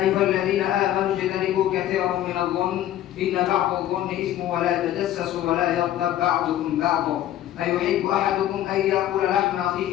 أيها الذين آمنوا اجتنبوا كثيرا من الظن إن بعض الظن إثم ولا تجسسوا ولا يغتب بعضكم بعضا أيحب أحدكم أن يأكل لحم أخيه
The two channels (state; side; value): quieter; right; 12.5 dB